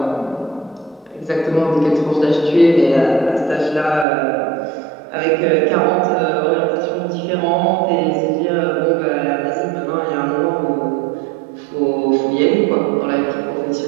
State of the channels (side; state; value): left; drops out; at 4.0 s